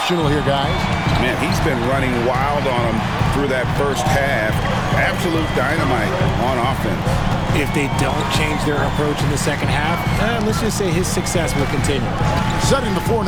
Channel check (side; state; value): both; identical; correlation 1.00